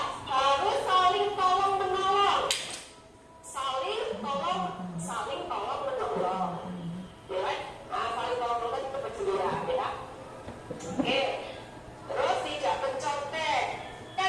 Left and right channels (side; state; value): both; identical; correlation 1.00